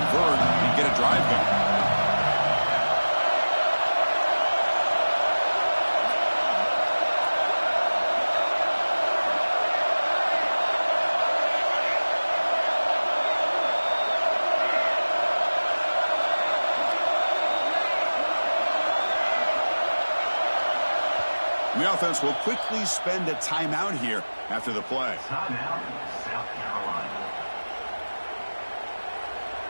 and get a drive going? The offense will quickly spend a timeout here after the play. Timeout, South Carolina.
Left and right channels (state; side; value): inverted; both; correlation -1.00